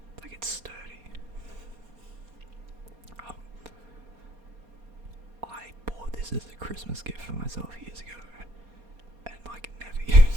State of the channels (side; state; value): left; late; 4.2 ms